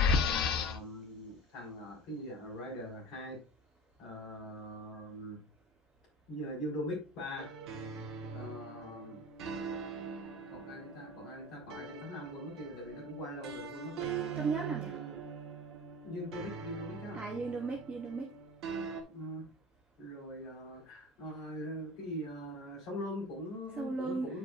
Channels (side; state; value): both; normal; correlation 0.36